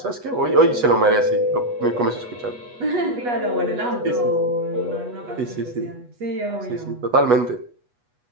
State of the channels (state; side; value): late; left; 8.2 ms